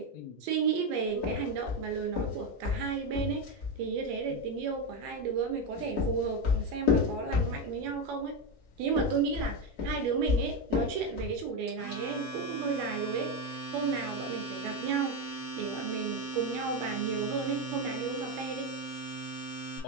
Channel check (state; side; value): normal; both; correlation 0.11